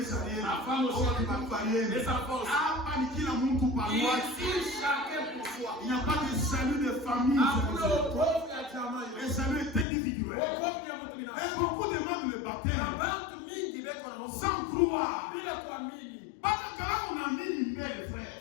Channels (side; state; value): right; drops out; at 9.9 s